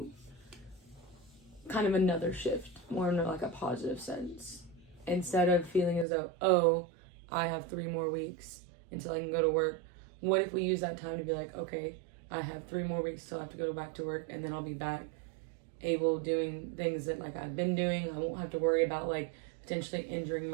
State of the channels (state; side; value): drops out; left; at 6.1 s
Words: kind of another shift, more in like a positive sense? Instead of feeling as though, oh, I have 3 more weeks until I can go to work, what if we use that time to be like, okay, I have 3 more weeks till I have to go back to work, and then I'll be back able doing things that like I've been doing. I won't have to worry about like potentially injuring